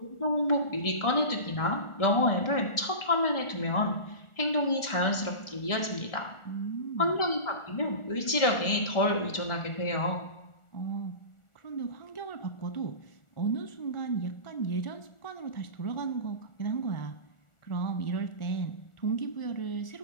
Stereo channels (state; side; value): late; right; 1.4 ms